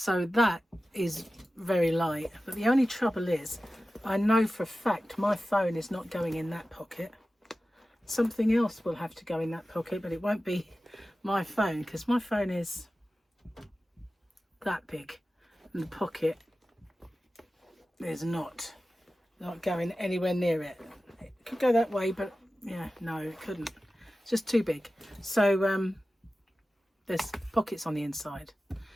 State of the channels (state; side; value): normal; both; correlation 0.95